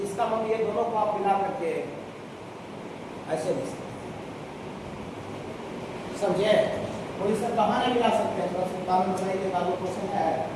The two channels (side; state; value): both; identical; correlation 1.00